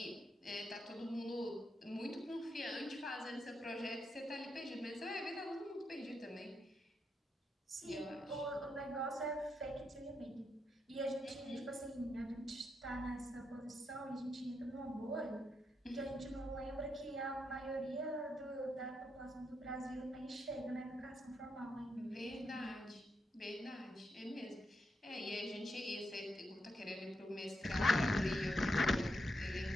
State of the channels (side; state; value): both; normal; correlation 0.82